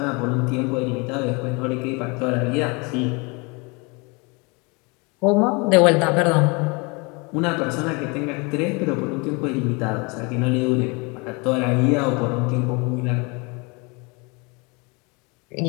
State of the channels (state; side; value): quieter; right; 29.3 dB